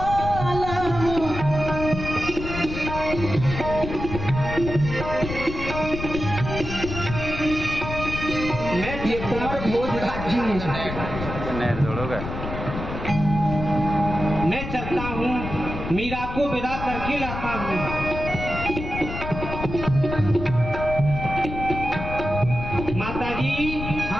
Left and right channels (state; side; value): noise; left; rumble, 7 dB below the sound